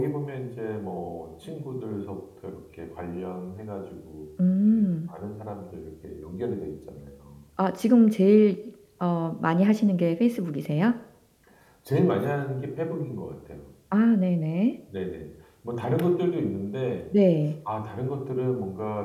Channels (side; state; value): both; identical; correlation 1.00